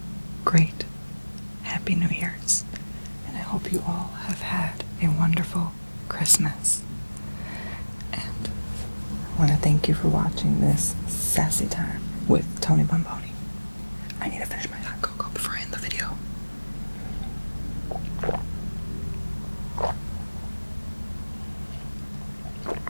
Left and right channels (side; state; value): both; inverted; correlation -1.00